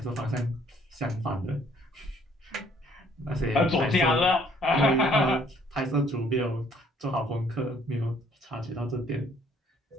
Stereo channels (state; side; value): normal; both; correlation 0.62